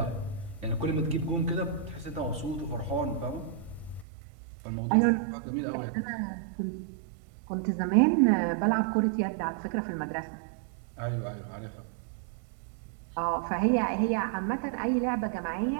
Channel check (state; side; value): drops out; left; at 4.0 s